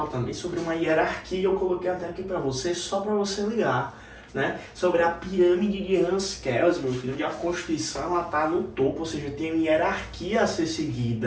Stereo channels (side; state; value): both; identical; correlation 1.00